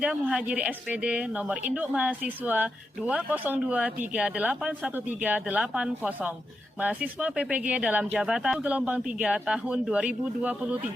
Muhajiri SPD, nomor induk mahasiswa 202381380. Mahasiswa PPG dalam jabatan gelombang 3 tahun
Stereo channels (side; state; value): both; normal; correlation 0.86